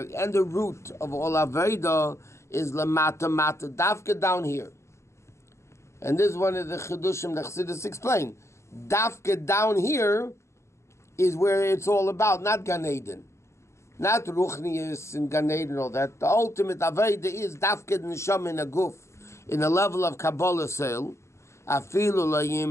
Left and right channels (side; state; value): right; late; 0.14 ms